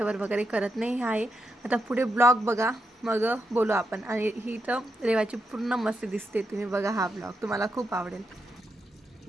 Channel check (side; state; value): both; normal; correlation 0.84